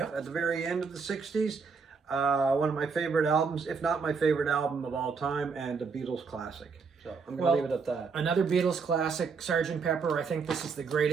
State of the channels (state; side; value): quieter; left; 5.2 dB